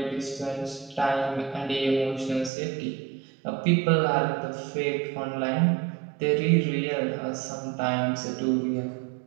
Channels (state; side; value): drops out; left; at 2.5 s